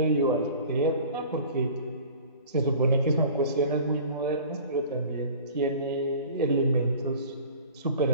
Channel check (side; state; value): both; inverted; correlation -0.43